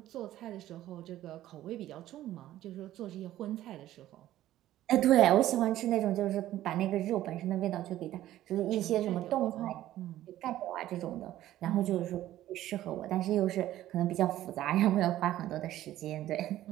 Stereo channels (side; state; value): left; quieter; 13.8 dB